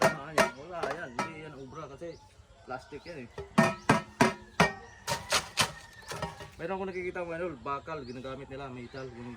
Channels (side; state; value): both; identical; correlation 1.00